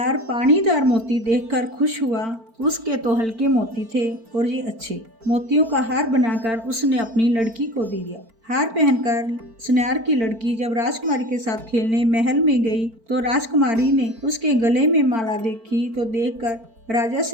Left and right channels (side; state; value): left; late; 4.4 ms